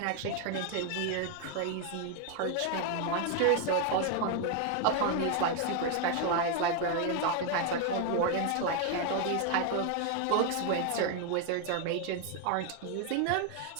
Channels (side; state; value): both; different; correlation 0.01